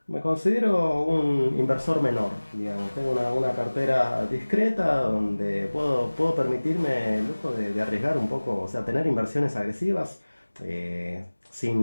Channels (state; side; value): inverted; both; correlation -1.00